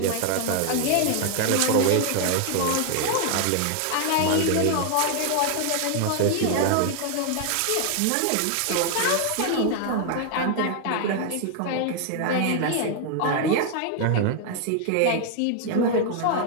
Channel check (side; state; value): both; different; correlation 0.00